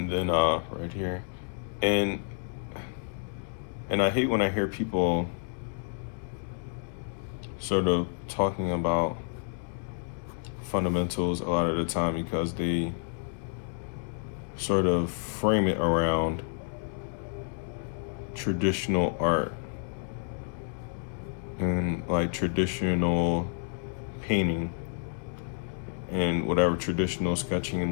then right here, and I hate when I hear people sort of talking about fundamentals a lot of the time, because they sort of frame it around traditional art and like traditional painting and whatever, traditional sketching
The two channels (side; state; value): right; silent; digital silence